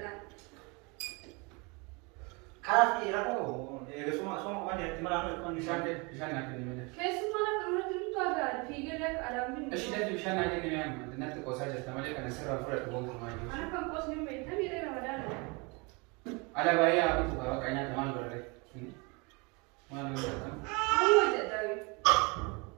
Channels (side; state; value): left; quieter; 29.2 dB